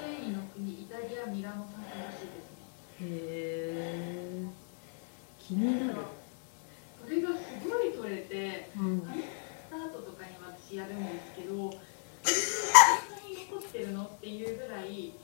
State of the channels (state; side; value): silent; right; digital silence